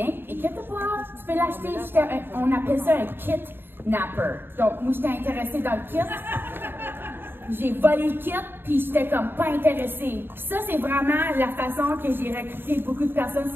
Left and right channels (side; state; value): left; late; 0.10 ms